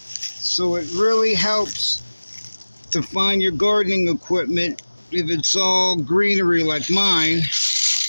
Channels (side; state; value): both; inverted; correlation -1.00